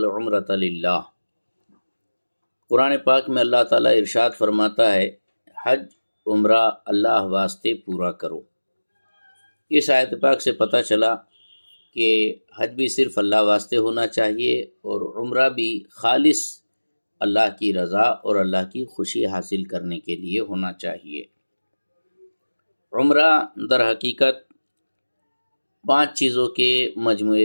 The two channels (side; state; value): both; inverted; correlation -1.00